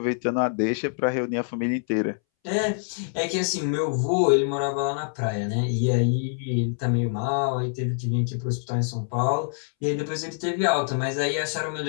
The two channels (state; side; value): silent; right; 61 dB below the other